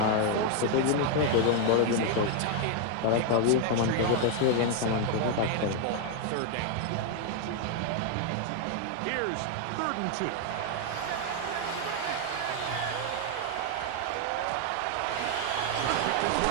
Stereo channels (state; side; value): different; both; correlation 0.00